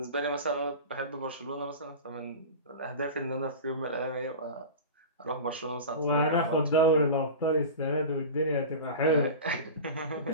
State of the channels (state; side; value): inverted; both; correlation -0.30